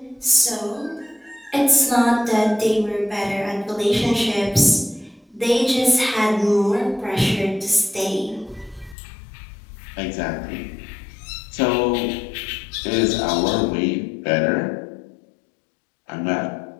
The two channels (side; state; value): right; drops out; at 9.0 s